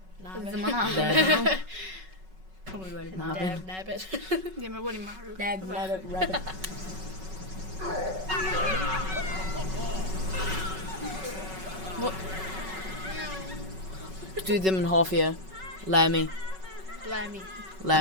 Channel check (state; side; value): late; left; 5.3 ms